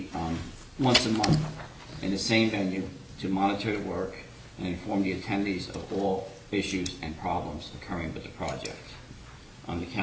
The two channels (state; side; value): identical; both; correlation 1.00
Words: once a month in the same venue to monitor the work and inform the attendees of all issues and problems occurring with the project. The